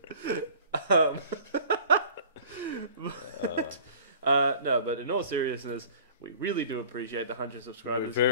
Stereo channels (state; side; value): inverted; both; correlation -0.47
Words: No, but in all seriousness, we really do appreciate the 100 subscribers. We're